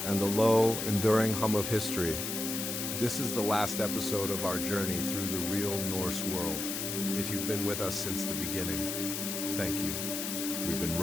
the low, enduring hum of history. This is the last episode of our journey through the real Norse world. If you've been with us since the beginning, thank you. We've been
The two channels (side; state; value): left; noise; hiss, 3 dB below the sound